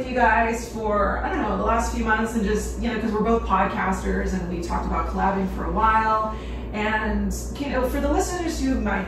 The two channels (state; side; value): identical; both; correlation 1.00